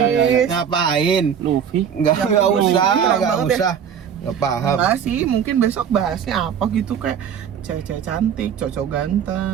Ngapain? Luffy. Enggak usah, Enggak enggak banget usah. Enggak paham. Enggak sih, mungkin besok bahasnya apa gitu kayak cewek-cewek cantik, cowok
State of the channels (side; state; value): left; quieter; 8.0 dB